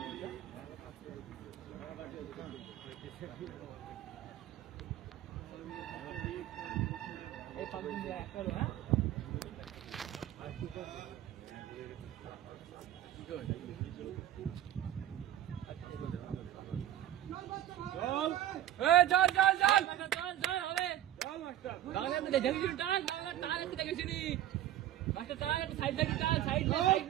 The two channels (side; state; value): left; quieter; 12.2 dB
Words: এই পাবলিক দিয়ে একটা হলো হ্যাঁ চল হবে বাংলা তো দেখেছি টান বাংলা টান একটু দেখেছি নি মাস্টার টান একটু সাইড দেখি টান সাইড